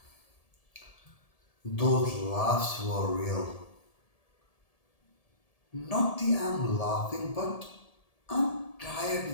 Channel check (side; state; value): right; late; 1.7 ms